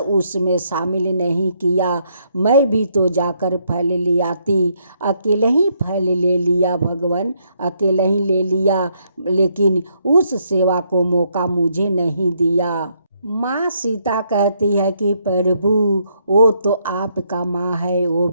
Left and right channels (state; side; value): inverted; both; correlation -0.73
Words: शामिल नहीं किया। मैं भी तो जाकर फल ले आती, अकेले ही फल ले लिया भगवान, अकेले ही ले लिया, लेकिन उस सेवा को मौका मुझे नहीं दिया। माँ सीता कहती है कि प्रभु वो तो आपका माँ है, वो